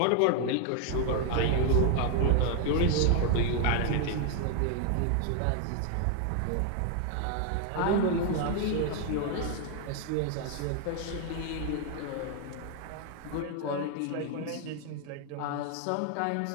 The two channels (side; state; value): both; different; correlation 0.00